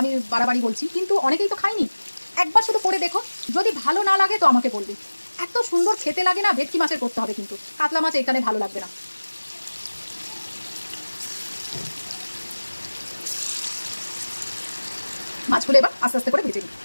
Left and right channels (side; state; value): both; inverted; correlation -1.00